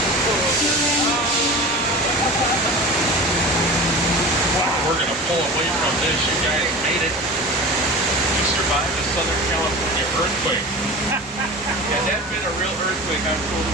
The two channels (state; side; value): normal; both; correlation 0.34